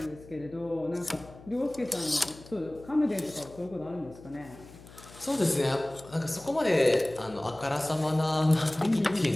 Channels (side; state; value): left; noise; hum, 20 dB below the sound